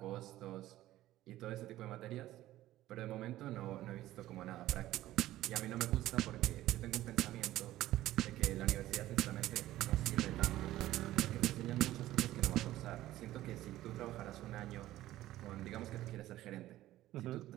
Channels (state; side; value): quieter; left; 15.0 dB